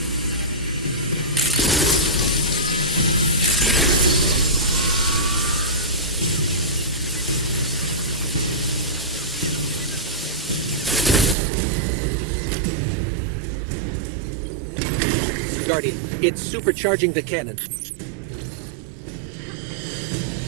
Guardian, it's supercharging the cannon.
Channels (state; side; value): drops out; left; at 11.4 s